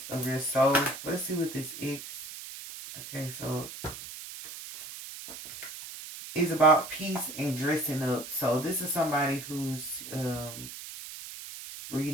of your soul. Let's see what this X. Okay, so it's about peace and dressing up. So this is somebody who's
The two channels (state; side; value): noise; right; hiss, 11 dB below the sound